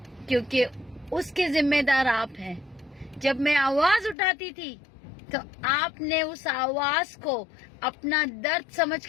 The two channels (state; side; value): drops out; right; at 4.2 s